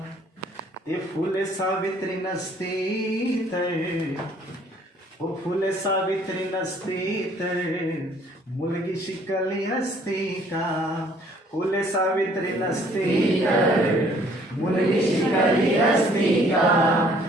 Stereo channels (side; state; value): both; normal; correlation 0.59